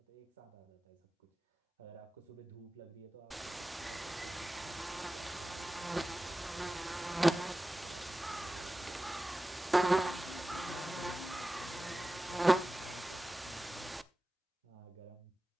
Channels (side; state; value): both; normal; correlation 0.95